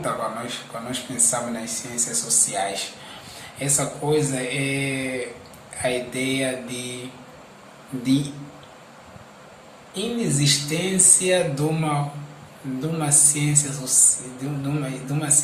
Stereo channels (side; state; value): both; identical; correlation 1.00